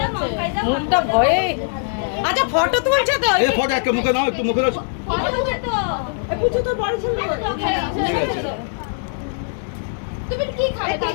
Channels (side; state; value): right; silent; 65 dB below the other